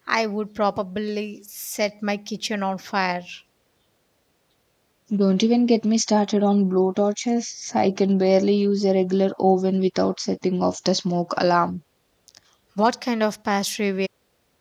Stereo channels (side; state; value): both; identical; correlation 1.00